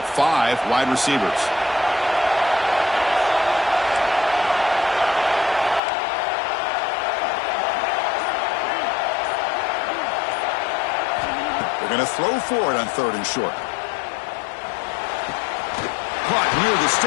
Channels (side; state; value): right; drops out; at 5.8 s